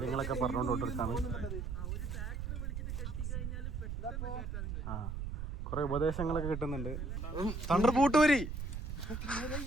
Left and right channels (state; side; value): noise; right; rumble, 4 dB below the sound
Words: പറഞ്ഞുകൊണ്ടിരിക്കാണ്. ആ കൊറേ ഉപദേശങ്ങളൊക്കെ കിട്ടുന്നുണ്ട്. തണ്ടർ പൂട്ടൂരി